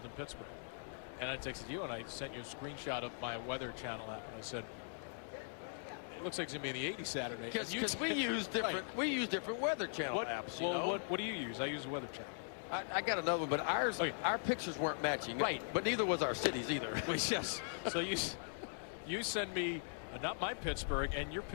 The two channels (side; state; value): right; silent; digital silence